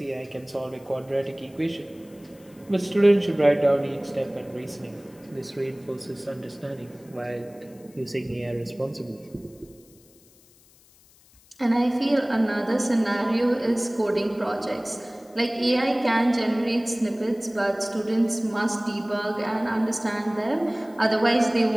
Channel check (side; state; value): left; noise; hiss, 28 dB below the sound